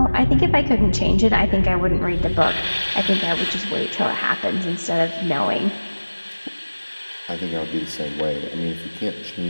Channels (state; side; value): inverted; both; correlation -1.00